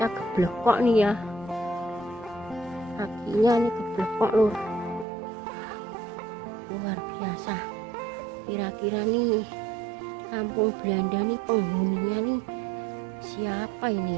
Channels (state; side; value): drops out; left; at 5.1 s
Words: keblekok nih ya. Kakinya nih keblekok lur. Luar biasa. Kira-kira nih kampung Belanda nih penghuninya nih siapa ini